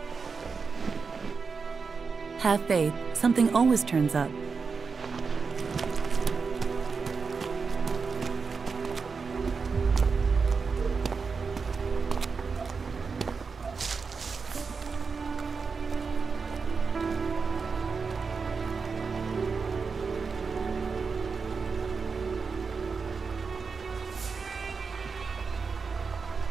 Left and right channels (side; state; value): left; quieter; 5.1 dB